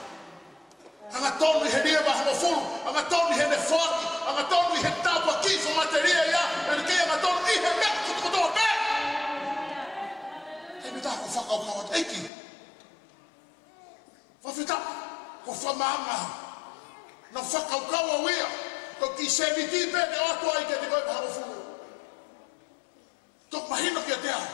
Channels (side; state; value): right; drops out; at 12.3 s